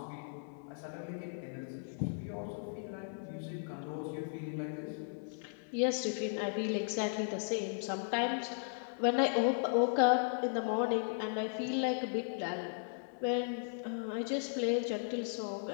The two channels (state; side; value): silent; right; 54 dB below the other